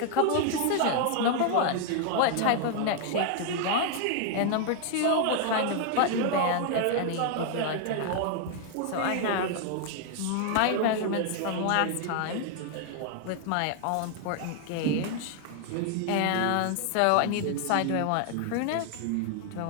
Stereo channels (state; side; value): different; both; correlation 0.00